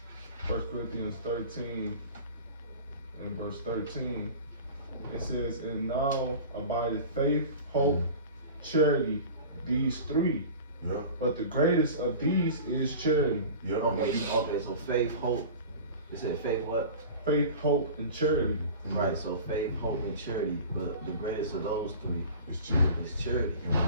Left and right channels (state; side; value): inverted; both; correlation -0.37